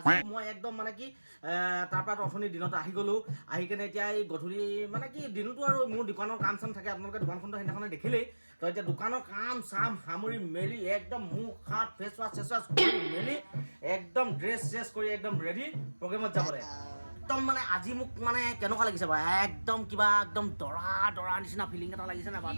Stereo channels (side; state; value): both; inverted; correlation -1.00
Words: মই একদম মানে কি তাৰপৰা অথনি দিনত আহি গ'লোঁ, আহি কেনে এতিয়া এই গধূলি মানে কি দিনতো আৰু মোৰ দোকানৰ কাম চাম থাকে, আপোনালোকে দোকানখনটো সেইদিনাখনে দেখিলেই। তো এতিয়া দোকানৰ কাম চাম সামৰি মেলি একদম মুখ হাত ফেচ ৱাছ কৰি মেলি একদম ড্ৰেছ কৰি একদম ৰেডি প্ৰগ্ৰেমত যাবলৈ। একদম মানে আজি মোক মানে কেনেকুৱা লাগিছে বাৰু, একদম কিবা একদম দৰা নিচিনা ফিলিং এটা লাগিছে নাই